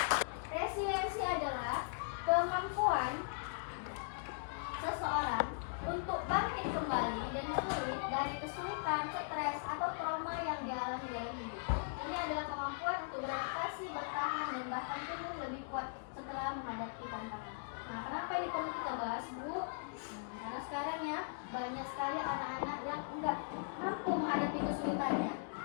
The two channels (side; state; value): right; silent; digital silence